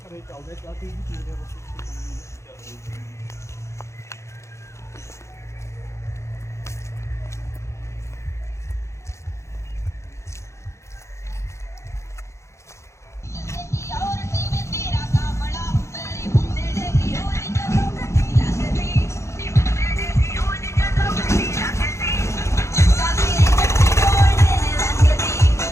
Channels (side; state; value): right; late; 0.14 ms